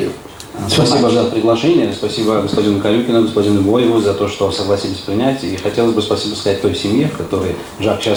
Спасибо за приглашение, спасибо господину Карюкину, господину Боеву за то, что согласились принять. И хотелось бы спасибо сказать той семье, в которой Жак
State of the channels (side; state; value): both; identical; correlation 1.00